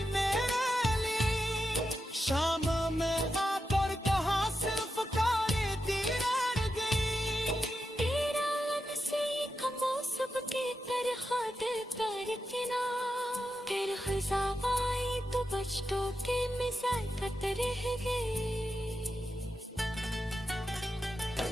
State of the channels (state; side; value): normal; both; correlation 0.88